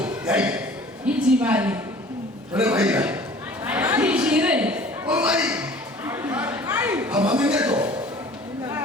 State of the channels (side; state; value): both; normal; correlation 0.47